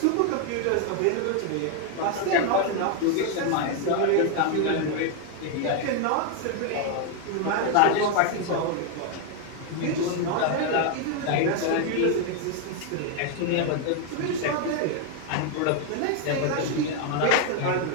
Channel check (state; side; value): different; both; correlation 0.00